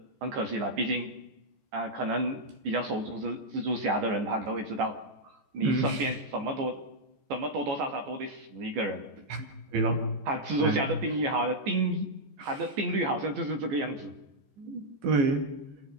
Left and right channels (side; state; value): left; late; 15 ms